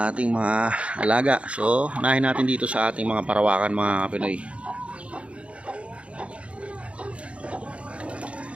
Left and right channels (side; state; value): left; late; 0.061 ms